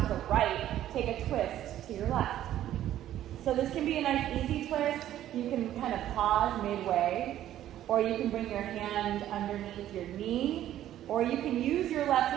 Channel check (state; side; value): quieter; left; 12.4 dB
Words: the right. Take a twist to your left. So this can be a nice easy twist. You can kind of pause midway. Or you can bring your hand underneath your knee, or you can use your left